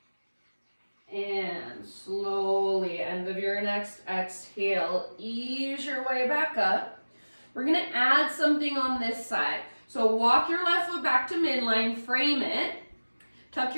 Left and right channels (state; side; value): inverted; both; correlation -1.00